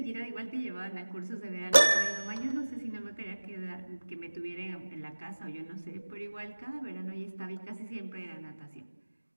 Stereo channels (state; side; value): inverted; both; correlation -1.00